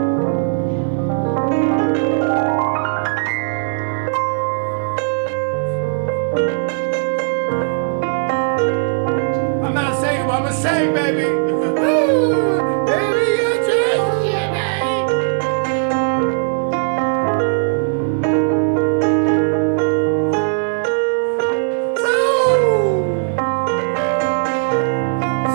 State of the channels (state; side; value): silent; left; 56 dB below the other